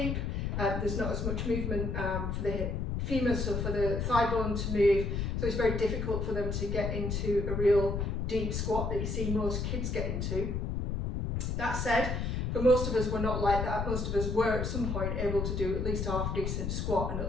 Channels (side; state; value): left; noise; rumble, 1 dB below the sound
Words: There's not as much movement for the femur, so for the thigh bone to move, so it's very difficult for them to get into a real deep squat that you see most kids get into. That said, for most of us, we're not like that. Most of us were at some point able to do at least a half decent squat and